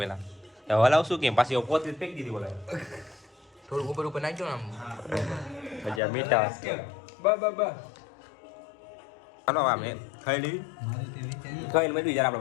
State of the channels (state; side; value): drops out; right; at 6.0 s